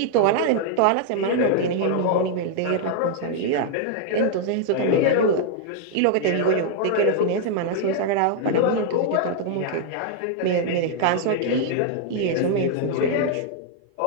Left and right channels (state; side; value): different; both; correlation 0.00